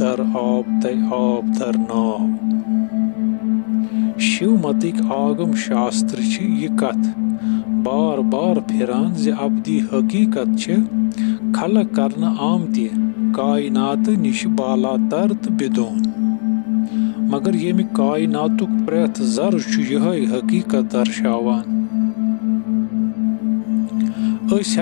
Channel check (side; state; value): right; silent; 62 dB below the other